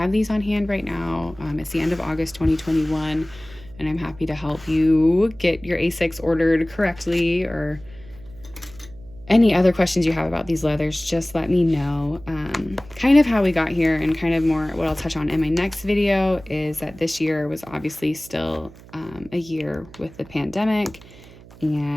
these on hand right now. It's the end of August 2021, and I'm happy to help you get your A6 ordered correctly, or any other questions you have about these leathers, just let me know. Kind of how we got here, and kind of more what I'll touch on in my next video, is that this year was obviously still a year with the pandemic,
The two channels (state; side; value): noise; right; hum, 21 dB below the sound